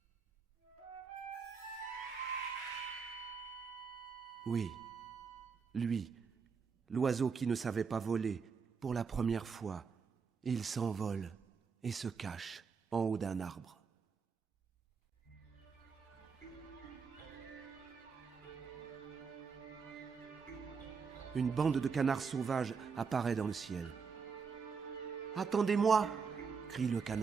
Oui, lui, l'oiseau qui ne savait pas voler, pour la première fois, il s'envole et se cache en haut d'un arbre. Une bande de canards sauvages apparaît dans le ciel. « Attendez-moi !» crie le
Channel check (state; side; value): quieter; left; 5.6 dB